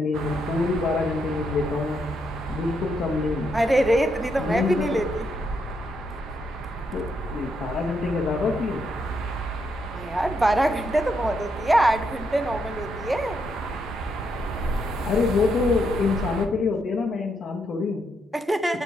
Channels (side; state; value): both; normal; correlation 0.78